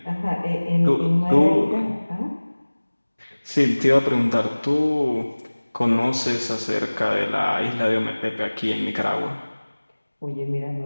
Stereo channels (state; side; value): inverted; both; correlation -1.00